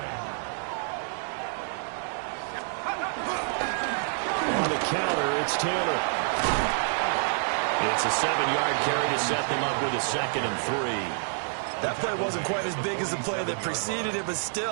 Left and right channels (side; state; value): left; silent; digital silence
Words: On the counter, it's Taylor. It's a 7-yard carry to set them up with a 2nd and 3. That play wasn't quite as big as the play that preceded it, but